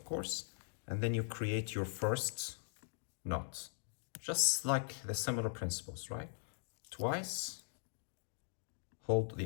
course, and then you create your first knot. Just like the similar principles, right? Twice, hold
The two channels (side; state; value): right; silent; digital silence